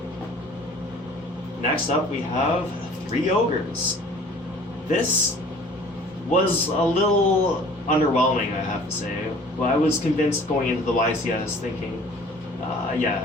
Next up we have 3 Ogres. This was a little underwhelming, I have to say, but I was convinced going into the YCS thinking,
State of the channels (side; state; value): both; normal; correlation 0.50